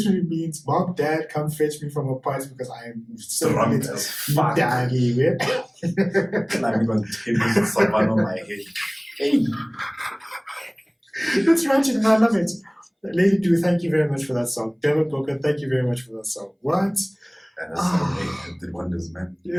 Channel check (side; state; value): both; identical; correlation 1.00